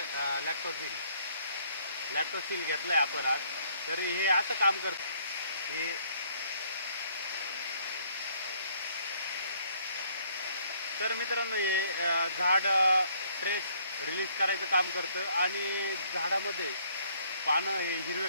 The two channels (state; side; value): inverted; both; correlation -0.64